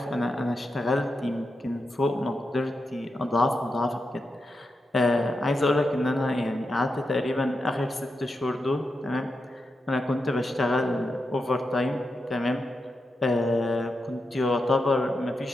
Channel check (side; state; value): both; normal; correlation 0.87